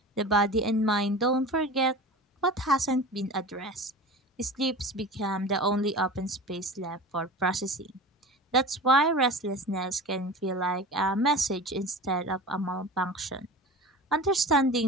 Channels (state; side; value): normal; both; correlation 0.34